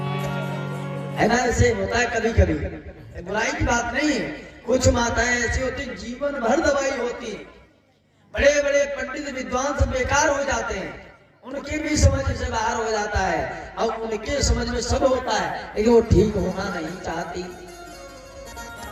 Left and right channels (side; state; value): both; identical; correlation 1.00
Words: है ना, ऐसे होता है कभी कभी, बुराई की बात नहीं है। कुछ माताएं ऐसी होती जीवन भर दवाई होती, बड़े बड़े पंडित विद्वान सब बेकार हो जाते हैं, उनके भी समझ से बाहर हो जाता है और उनके समझ में सब होता है, लेकिन वो ठीक होना नहीं चाहती।